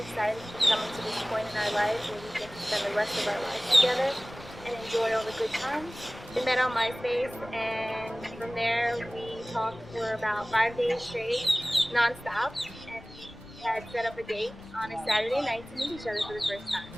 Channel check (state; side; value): noise; left; rumble, 20 dB below the sound